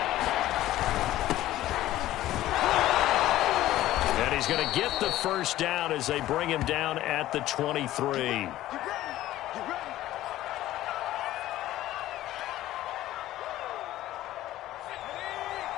He's going to get the 1st down as they bring him down at the 23.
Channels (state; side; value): quieter; right; 14.7 dB